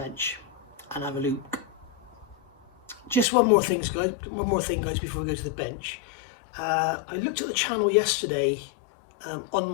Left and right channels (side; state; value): right; drops out; at 3.2 s